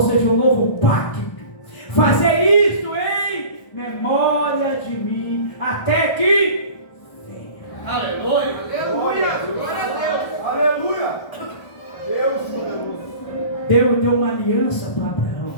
seja, o novo pacto. Fazer isto em memória de mim, até que venha. Aleluia! Aleluia! Glória a Deus! Aleluia! Deus poderoso. Deus deu uma aliança para Abraão.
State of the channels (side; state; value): right; late; 1.1 ms